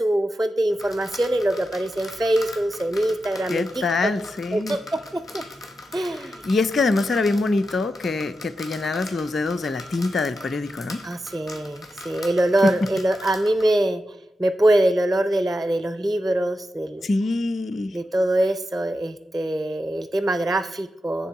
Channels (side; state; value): both; normal; correlation 0.89